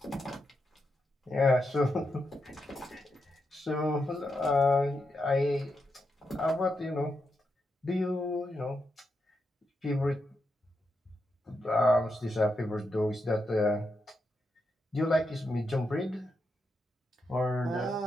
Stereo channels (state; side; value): normal; both; correlation 0.84